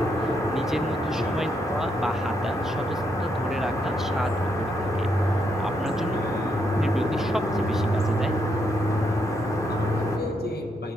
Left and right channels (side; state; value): both; normal; correlation 0.78